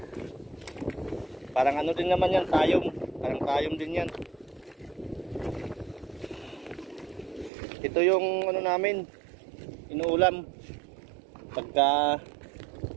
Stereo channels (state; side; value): drops out; left; at 7.5 s